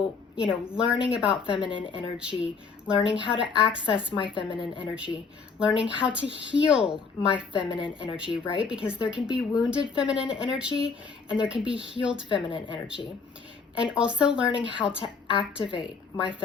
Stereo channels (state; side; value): quieter; right; 5.1 dB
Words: learning about feminine energy, learning how to access my feminine energy, learning how to heal my feminine energy, right? Because there can be wounded feminine energy and there can be healed feminine energy. And also learning how to activate my